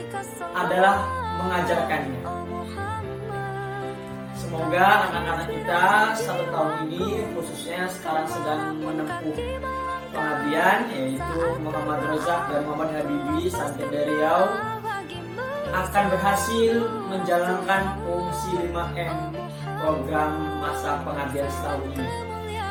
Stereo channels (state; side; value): identical; both; correlation 1.00